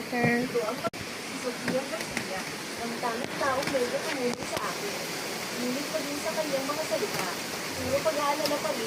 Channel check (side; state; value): both; identical; correlation 1.00